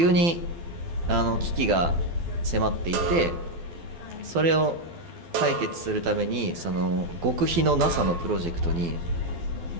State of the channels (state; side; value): late; left; 12 ms